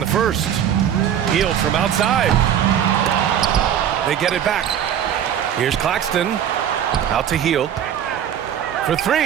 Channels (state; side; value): quieter; left; 9.6 dB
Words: first. Healed from outside. They get it back. Here's Claxton. Out to Heal. For